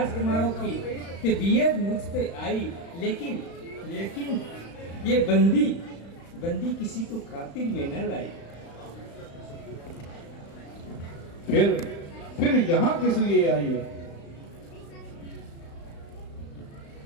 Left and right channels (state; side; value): late; right; 35 ms